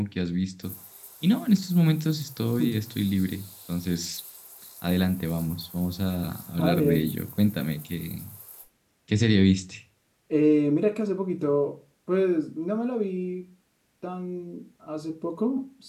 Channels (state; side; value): identical; both; correlation 1.00